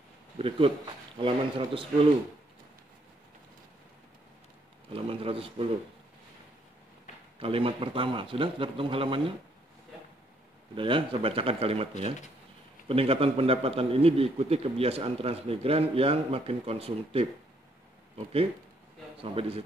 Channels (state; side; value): normal; both; correlation 0.69